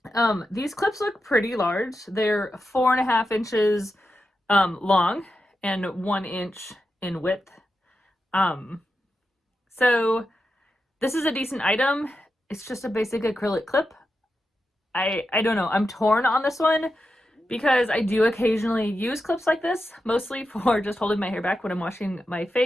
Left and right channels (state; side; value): normal; both; correlation 0.89